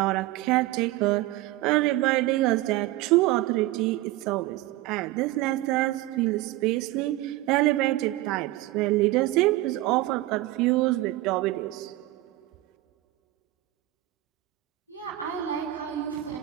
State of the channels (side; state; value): left; quieter; 17.0 dB